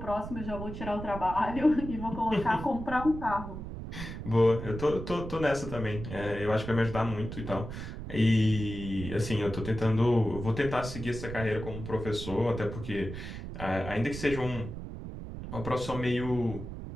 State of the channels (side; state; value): right; noise; rumble, 8 dB below the sound